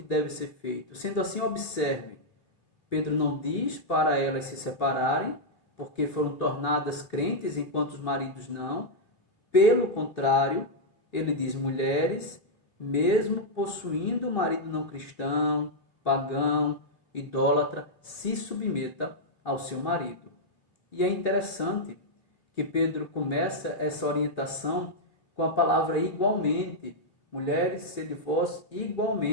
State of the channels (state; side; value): late; right; 3.0 ms